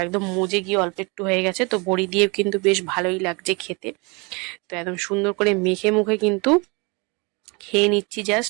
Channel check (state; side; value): quieter; left; 29.2 dB